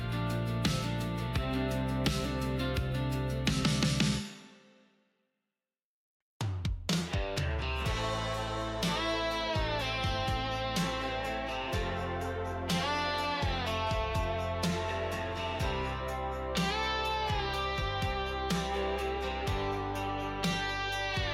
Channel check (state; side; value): identical; both; correlation 1.00